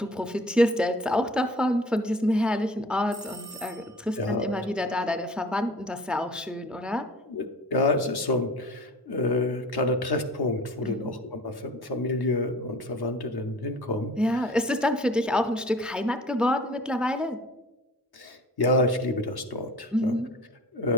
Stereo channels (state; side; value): normal; both; correlation 0.45